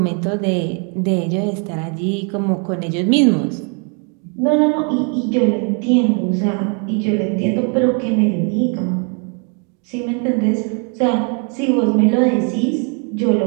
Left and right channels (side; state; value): left; quieter; 38.1 dB